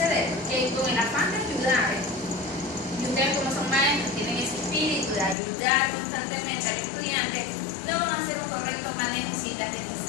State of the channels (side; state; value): right; drops out; at 5.4 s